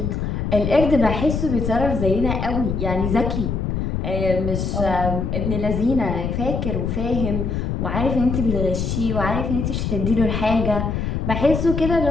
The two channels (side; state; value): left; noise; rumble, 1 dB below the sound